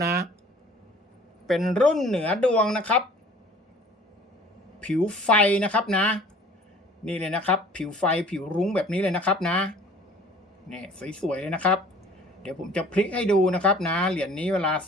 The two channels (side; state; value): both; normal; correlation 0.50